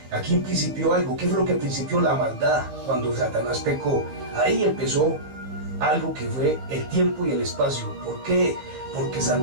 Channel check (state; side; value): late; left; 15 ms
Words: Aquí principió algo. ¿Qué fue lo que principió? La maldad. Cuando Satanás pecó, ahí empezó algo que fue el tiempo y el espacio. ¿Por qué? Porque